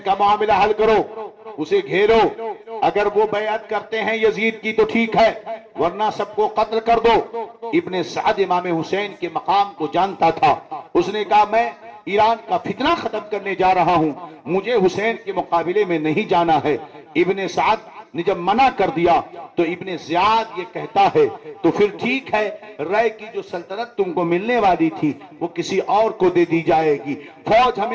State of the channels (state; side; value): identical; both; correlation 1.00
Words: کا معاملہ حل کرو، اسے گھیرو. اگر وہ بیعت کرتے ہیں یزید کی تو ٹھیک ہے، ورنہ سب کو قتل کر دو. ابن سعد امام حسین کے مقام کو جانتا تھا. اس نے کہا میں ایران کا فتنہ ختم کرنے جا رہا ہوں، مجھے حسین کے مقابلے میں نہیں جانا ہے. ابن سعد نے جب منع کر دیا تو ابن زیاد یہ کہتا ہے تو پھر ٹھیک ہے، رائے کی جو سلطنت تم کو ملنے والی تھی وہ کسی اور کو دے دی جائے گی، فوج